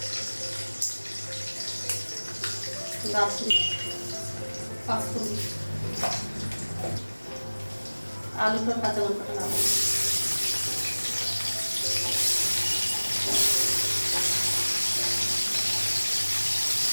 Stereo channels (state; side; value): inverted; both; correlation -1.00